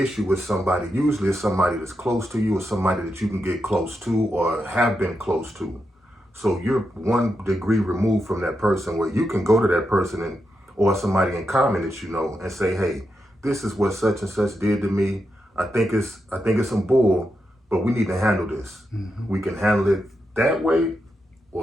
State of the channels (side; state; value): both; normal; correlation 0.86